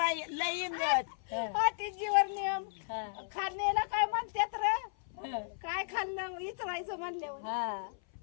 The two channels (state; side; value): silent; right; 55 dB below the other